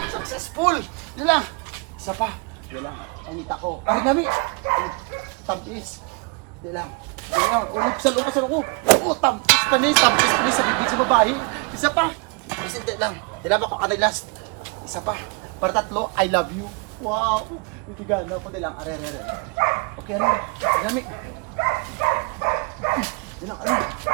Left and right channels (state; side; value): quieter; left; 32.9 dB